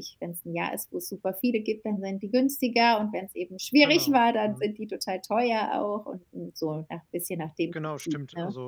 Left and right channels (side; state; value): both; identical; correlation 1.00